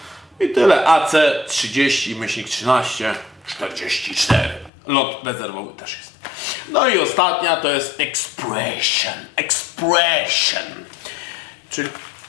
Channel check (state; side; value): drops out; right; at 4.7 s